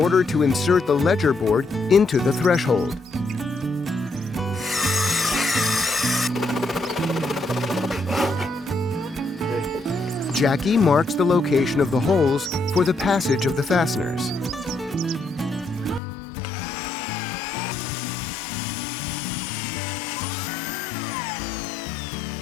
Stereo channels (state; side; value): drops out; right; at 16.0 s